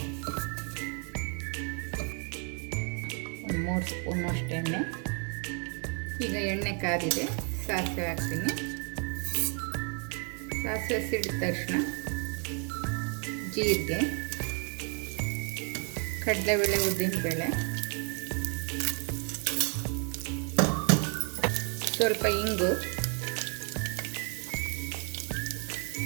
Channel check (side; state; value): left; quieter; 38.2 dB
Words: ಒಂದು 3 ಸ್ಪೂನಷ್ಟು ಎಣ್ಣೆ. ಈಗ ಎಣ್ಣೆ ಕಾದಿದೆ, ಸಾಸಿವೆ ಹಾಕ್ತೀನಿ. ಸಾಸಿವೆ ಸಿಡಿದ ತಕ್ಷಣ ಜೀರಿಗೆ, ಕಡಲೆಬೇಳೆ, ಉದ್ದಿನಬೇಳೆ, ಸ್ವಲ್ಪ ಇಂಗು,